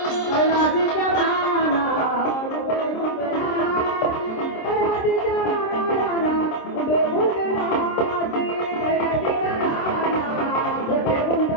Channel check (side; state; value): right; late; 26 ms